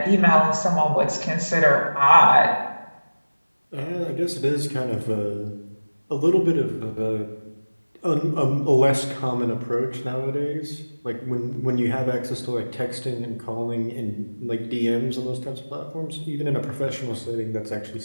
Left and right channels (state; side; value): inverted; both; correlation -1.00